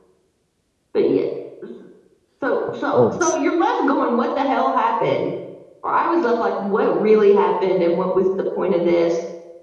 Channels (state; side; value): identical; both; correlation 1.00